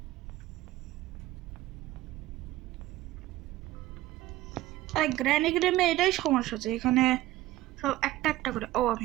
আরে গ্র্যানি গেমে এটাই সমস্যা আছে, এখানে সব একটা একটা করে। ও আমি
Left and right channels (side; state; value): left; quieter; 15.9 dB